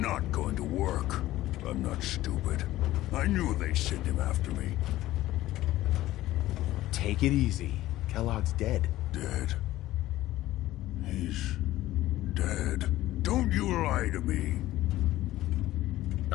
going to work. I'm not stupid. I knew they'd send him after me. Take it easy. Kellogg's dead. Dead? He's dead. Don't you lie to me.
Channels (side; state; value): right; quieter; 15.6 dB